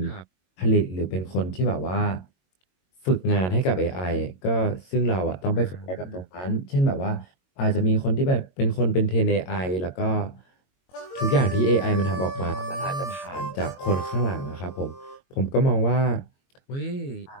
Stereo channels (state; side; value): late; right; 22 ms